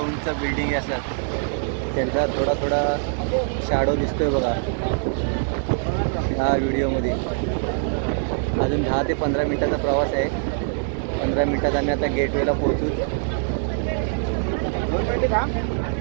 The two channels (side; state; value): left; silent; digital silence